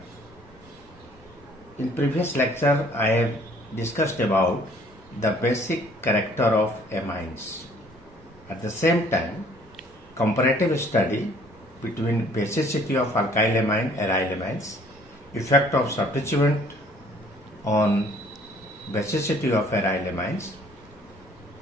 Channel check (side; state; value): both; normal; correlation 0.58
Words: In previous lecture, I have discussed about the basic character of amines. At the same time, comparative study between basicity of alkylamine and arylamines, effect of substituent on basicity of arylamines,